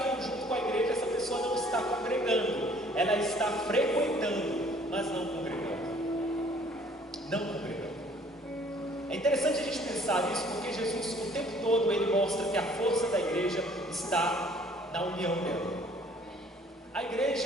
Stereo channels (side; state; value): both; normal; correlation 0.57